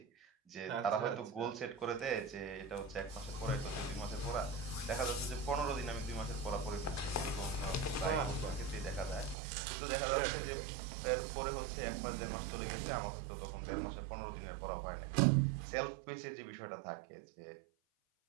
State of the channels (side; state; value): left; drops out; at 9.3 s